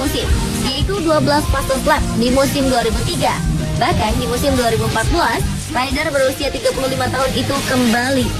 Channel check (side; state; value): both; identical; correlation 1.00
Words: yaitu 12 fase lap di musim 2003. Bahkan di musim 2014, rider berusia 35 tahun itu kembali